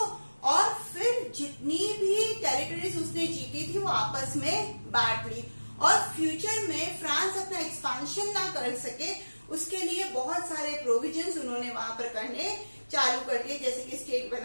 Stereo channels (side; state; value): both; inverted; correlation -1.00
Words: और फिर जितनी भी टेरिटरीज उसने जीती थी वो आपस में बांट ली, और फ्यूचर में फ्रांस अपना एक्सपांशन ना कर सके उसके लिए बहुत सारे प्रोविजंस उन्होंने वहां पर करने चालू कर दिए, जैसे कि स्टेट